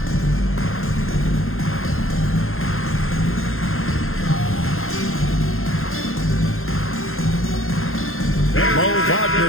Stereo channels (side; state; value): right; late; 0.61 ms